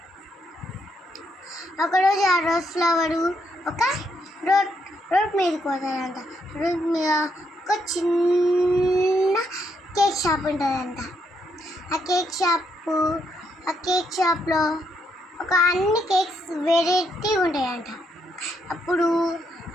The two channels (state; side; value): normal; both; correlation 0.77